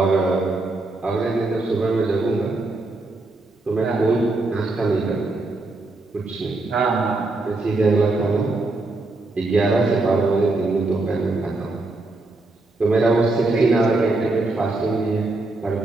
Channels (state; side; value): quieter; left; 3.1 dB